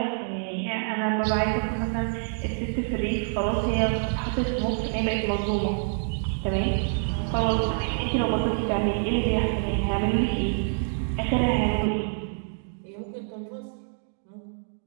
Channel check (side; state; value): left; silent; digital silence